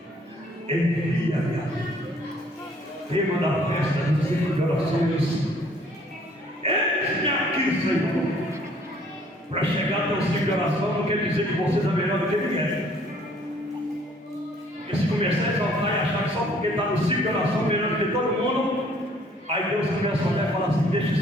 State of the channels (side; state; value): both; normal; correlation 0.60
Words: envia-me a mim. Tema da festa dos 5 de orações: eis-me aqui, Senhor. Para chegar até o 5 de oração não quer dizer que você é melhor do que ninguém. Porque se começar a exaltar e achar que só porque está no 5 de oração melhor do que todo mundo, aí Deus começa a olhar e falar assim: deixa